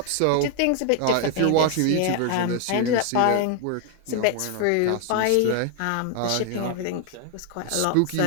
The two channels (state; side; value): different; both; correlation 0.00